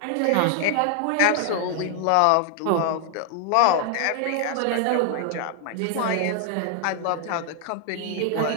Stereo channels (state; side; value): different; both; correlation 0.00